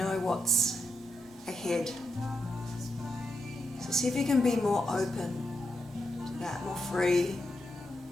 what's ahead. So see if you can be more open to that, more free,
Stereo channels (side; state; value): both; normal; correlation 0.83